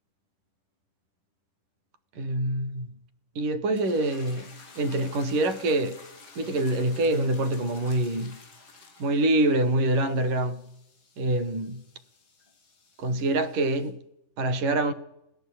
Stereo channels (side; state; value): left; late; 10 ms